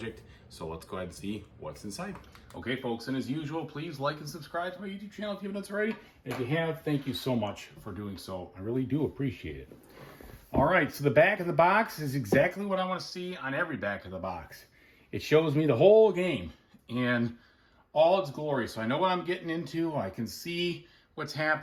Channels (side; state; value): both; identical; correlation 1.00